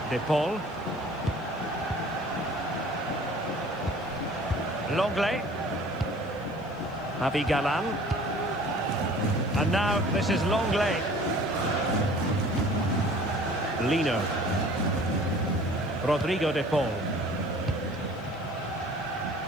De Paul. Lenglet. Javi Galan. And now this is Lenglet. Lino. Rodrigo De Paul.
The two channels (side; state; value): left; noise; hiss, 30 dB below the sound